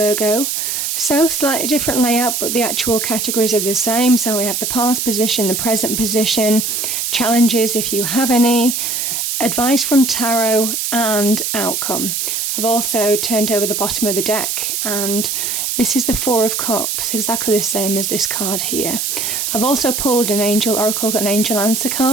So slightly different layout, but the actual categories are the same. So we have the past position, the present position, challenges if you have any, advice from tarot and outcome. I've also turned over the bottom of the deck and this is the Four of Cups, exactly the same as this card here. I've also pulled an angel oracle, got an angel answer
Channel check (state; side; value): noise; right; hiss, 1 dB below the sound